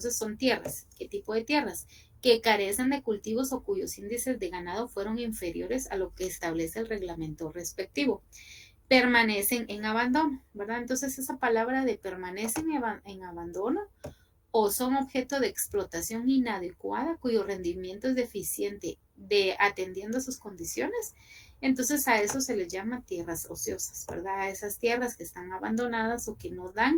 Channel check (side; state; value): both; identical; correlation 1.00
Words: son tierras. ¿Qué tipo de tierras? Que carecen de cultivos o cuyos índices de ganado fueron inferiores a lo que establece el reglamento respectivo. Permanecen en abandono, ¿verdad? Entonces esa palabra de permanecen en abandono o son objeto de explotación inadecuada cuyo rendimiento es deficiente de atendiendo a sus condiciones, entonces a eso se les llama tierras ociosas, ¿verdad? A esas tierras que están abandonadas o que no